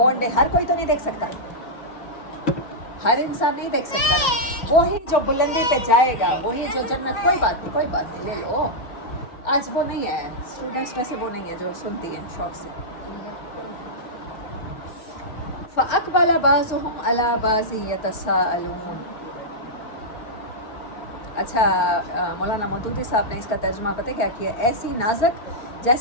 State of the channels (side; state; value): right; late; 4.0 ms